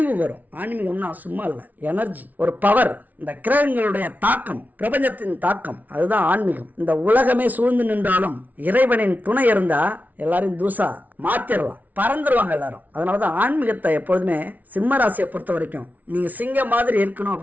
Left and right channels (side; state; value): left; late; 0.077 ms